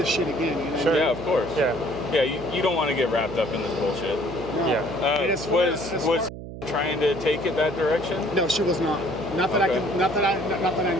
shit again. You know? Sure. Yeah, of course. Yeah. Yeah, you don't want to get wrapped up in this bullshit. No. Yeah. It is Was trying to take it that direction? No, she was not. Not that Okay. not that I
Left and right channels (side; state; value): right; noise; hum, 11 dB below the sound